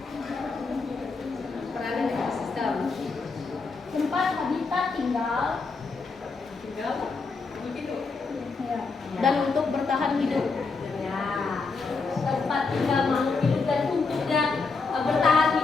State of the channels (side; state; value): right; quieter; 4.4 dB